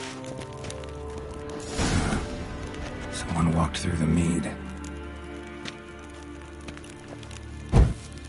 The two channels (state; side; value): identical; both; correlation 1.00